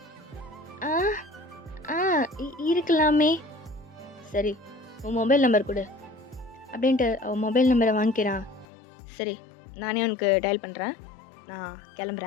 ஆ ஆ இருக்கலாமே. சரி உன் மொபைல் நம்பர் கொடு அப்படின்ட்டு அவன் மொபைல் நம்பரை வாங்கிக்கிறான். சரி நானே உனக்கு டயல் பண்ணுறேன், நான்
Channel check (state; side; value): drops out; right; at 8.7 s